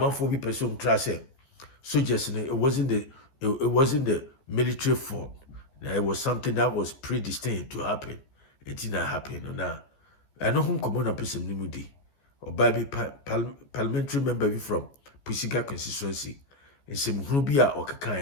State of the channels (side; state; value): right; late; 14 ms